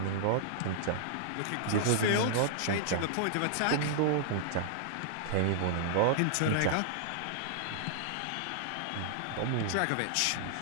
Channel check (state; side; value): different; both; correlation -0.01